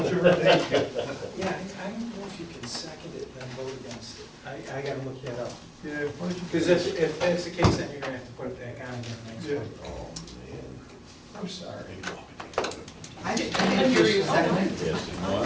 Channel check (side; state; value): both; identical; correlation 1.00